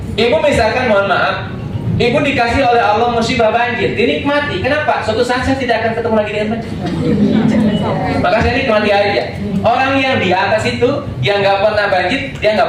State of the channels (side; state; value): both; identical; correlation 1.00